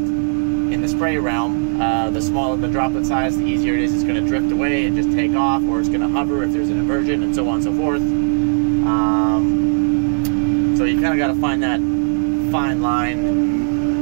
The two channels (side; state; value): left; silent; 67 dB below the other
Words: in the spray realm, the smaller the droplet size, the easier it is. It's going to drift away and just take off, or it's going to hover if there's an inversion, and so on and so forth. So you kind of got to find that fine line